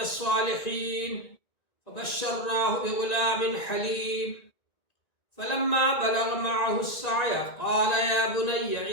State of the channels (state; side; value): late; right; 1.9 ms